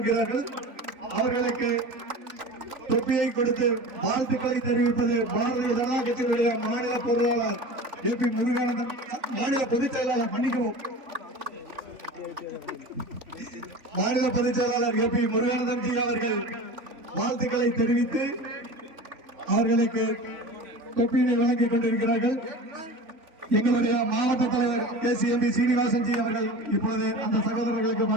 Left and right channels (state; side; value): late; left; 3.5 ms